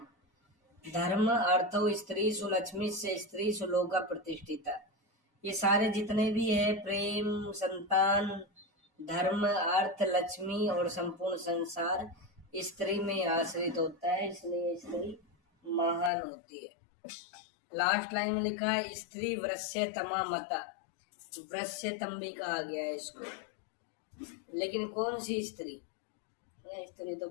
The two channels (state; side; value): drops out; right; at 16.1 s